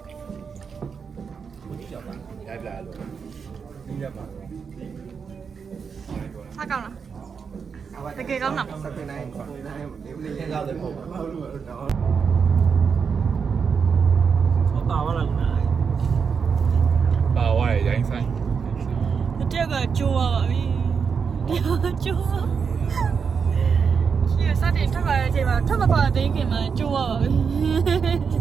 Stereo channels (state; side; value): quieter; left; 6.0 dB